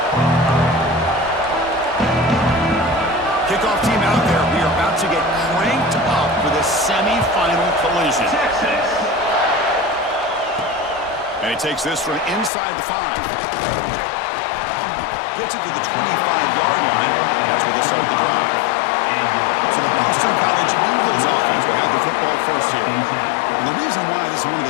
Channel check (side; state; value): right; drops out; at 12.5 s